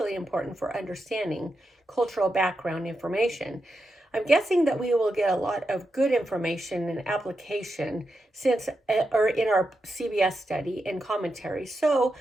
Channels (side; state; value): both; normal; correlation 0.87